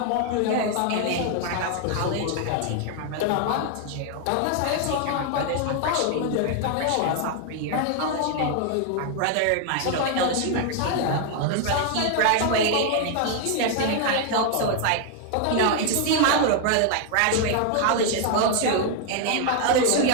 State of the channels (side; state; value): both; different; correlation 0.00